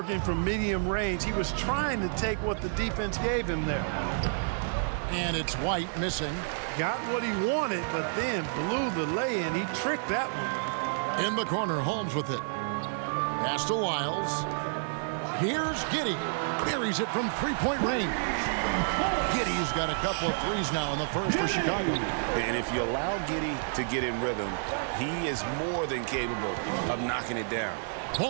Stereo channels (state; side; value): silent; left; 58 dB below the other